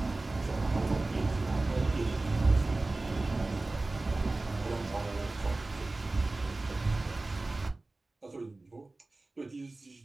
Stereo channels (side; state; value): left; quieter; 3.1 dB